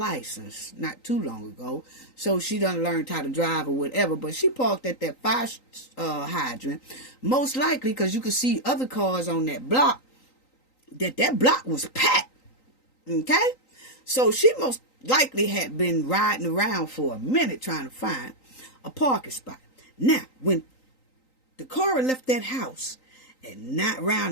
not too long ago, so she done learned how to drive or whatever, but she parked at that fire hydrant, most likely because you could see other cars on that block, that block was packed. Okay, so she most likely had been riding around for a minute trying to find a parking spot. Now, when Dacara left that house at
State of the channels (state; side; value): late; right; 3.9 ms